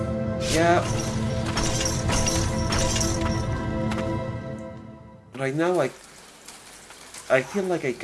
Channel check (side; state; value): both; identical; correlation 1.00